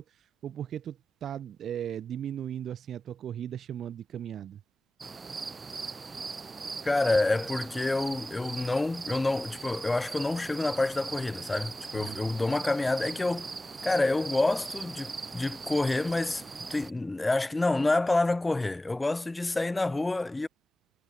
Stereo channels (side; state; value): both; normal; correlation 0.96